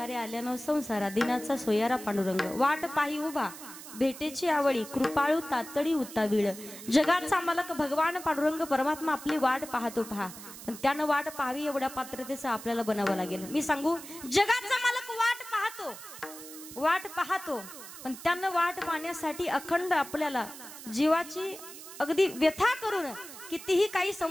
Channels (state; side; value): noise; right; hiss, 14 dB below the sound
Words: आल्यानं संसारा, दिनाचा सोयारा पांडुरंग. वाट पाही उभा भेटेची आवळी कृपाळू तातडी उतावीळ जगाचा मालक भगवान पांडुरंग परमात्मा आपली वाट पाहतो पहा पण त्यानं वाट पाहावी एवढ्या पात्रतेचं आपल्याला बनावं लागेल मी सांगू जगाचा मालक वाट पाहतो पण त्यानं वाट पाहण्यासाठी अखंड आपल्याला जीवाची अगदी व्यथा करून कितीही काही